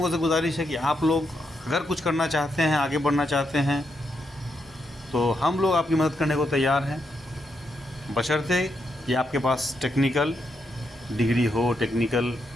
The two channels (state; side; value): normal; both; correlation 0.81